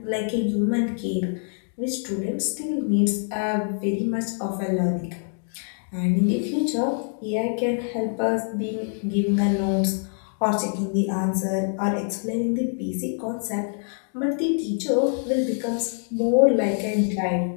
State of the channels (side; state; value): right; silent; 59 dB below the other